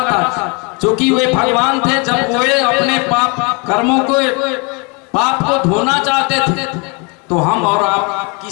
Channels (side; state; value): right; quieter; 31.5 dB